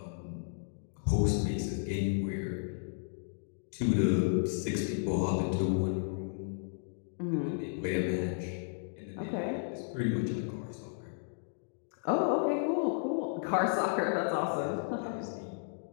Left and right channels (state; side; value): silent; right; digital silence